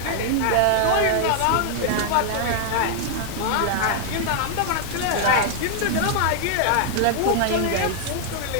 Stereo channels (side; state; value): both; different; correlation 0.00